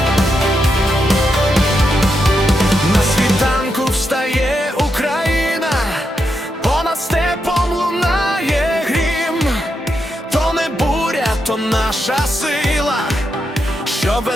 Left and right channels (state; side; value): normal; both; correlation 0.84